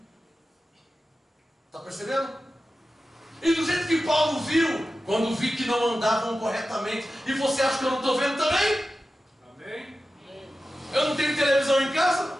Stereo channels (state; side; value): normal; both; correlation 0.93